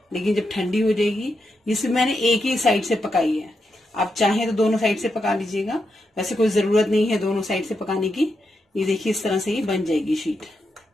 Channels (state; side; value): normal; both; correlation 0.84